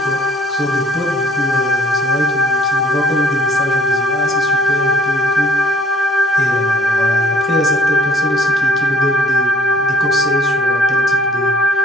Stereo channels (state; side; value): normal; both; correlation 0.59